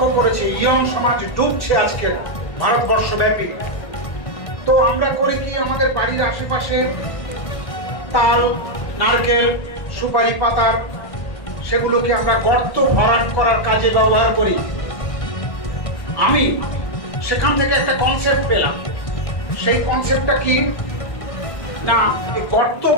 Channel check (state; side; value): late; right; 1.6 ms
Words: করেছি। ইয়ং সমাজ ডুবছে আজকে ভারতবর্ষব্যাপী। তো আমরা করি কি, আমাদের বাড়ির আশেপাশে তাল, নারকেল, সুপারি পাতা, সেগুলোকে আমরা গর্ত ভরাট করার কাজে ব্যবহার করি। আমি সেখান থেকে একটা কনসেপ্ট পেলাম। সেই কনসেপ্টটা কি না, গর্ত